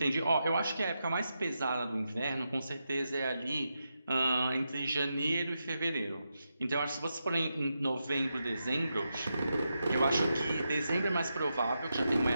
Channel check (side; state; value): both; inverted; correlation -0.87